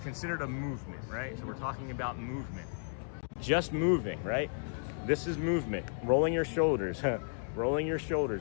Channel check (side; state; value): right; silent; digital silence